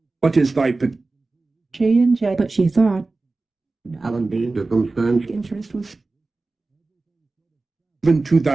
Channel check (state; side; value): quieter; left; 3.5 dB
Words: What is thy she and Jay. But she thought. Alan Dean. Circumstance. Interest was given to